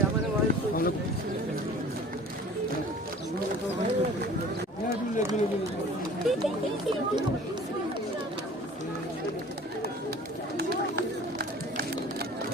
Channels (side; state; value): both; normal; correlation 0.46